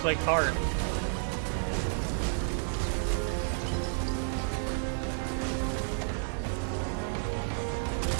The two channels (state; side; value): silent; left; digital silence